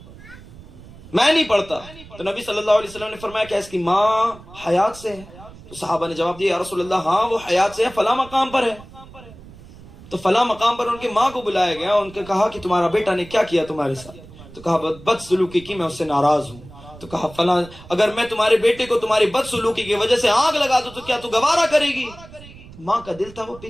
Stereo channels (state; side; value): noise; right; rumble, 19 dB below the sound